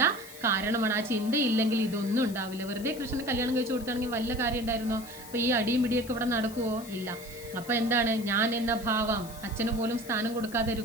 കാരണമാണ്, ആ ചിന്ത ഇല്ലെങ്കിൽ ഇതൊന്നും ഉണ്ടാവില്ല. വെറുതെ കൃഷ്ണന് കല്യാണം കഴിച്ചു കൊടുത്താണെങ്കിൽ വല്ല കാര്യം ഉണ്ടായിരുന്നോ? അപ്പോൾ ഈ അടിയും പിടിയൊക്കെ ഇവിടെ നടക്കുമോ? ഇല്ല. അപ്പോൾ എന്താണ്, ഞാൻ എന്ന ഭാവം, അച്ഛന് പോലും സ്ഥാനം കൊടുക്കാതെ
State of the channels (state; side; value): noise; left; hiss, 17 dB below the sound